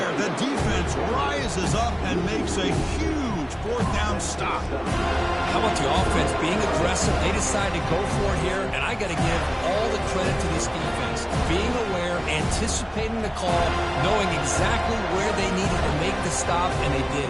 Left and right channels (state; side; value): identical; both; correlation 1.00